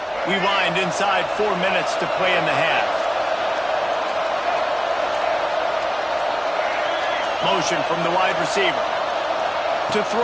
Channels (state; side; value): identical; both; correlation 1.00